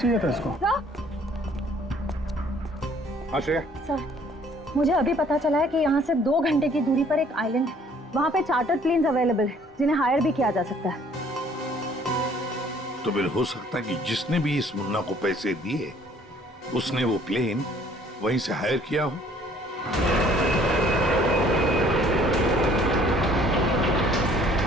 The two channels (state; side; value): normal; both; correlation 0.58